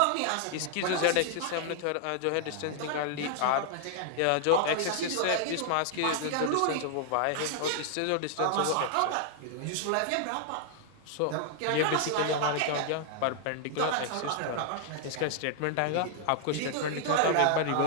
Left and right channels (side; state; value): both; different; correlation 0.00